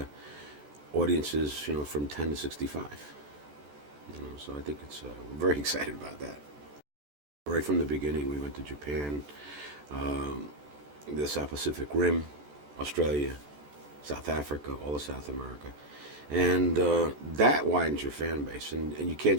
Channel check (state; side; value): late; left; 14 ms